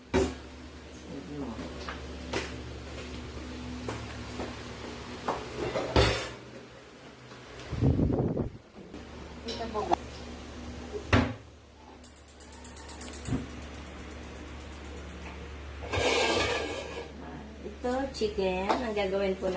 Ito po. Ito, chicken. Ang gagawin po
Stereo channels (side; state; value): both; identical; correlation 1.00